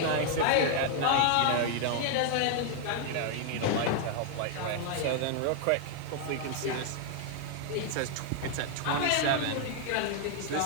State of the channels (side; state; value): both; different; correlation 0.00